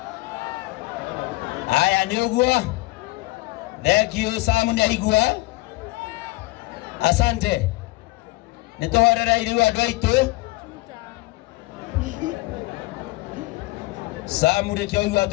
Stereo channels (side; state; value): right; quieter; 21.7 dB